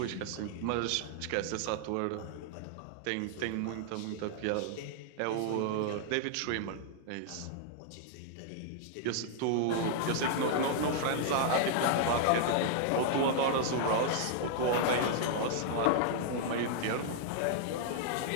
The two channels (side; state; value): both; different; correlation -0.01